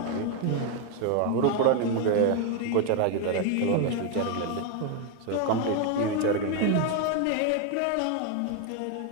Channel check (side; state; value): both; different; correlation 0.01